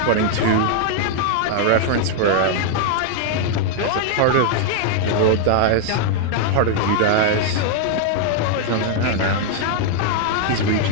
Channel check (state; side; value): different; both; correlation 0.00